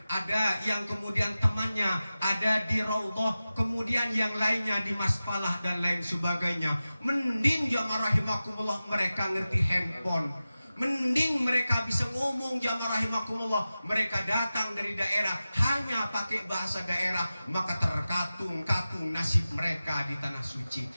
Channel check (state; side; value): inverted; both; correlation -0.95